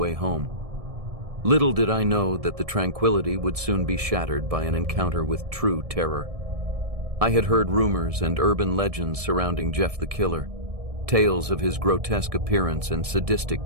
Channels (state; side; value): late; left; 1.7 ms